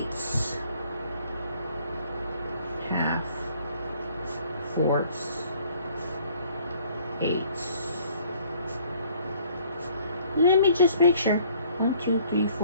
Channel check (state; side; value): inverted; both; correlation -0.59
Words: Half, fourths, 8s. Let me just make sure. 1, 2, 3,